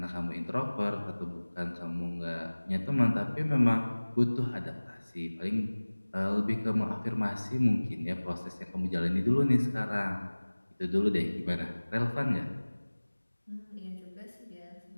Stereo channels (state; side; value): inverted; both; correlation -1.00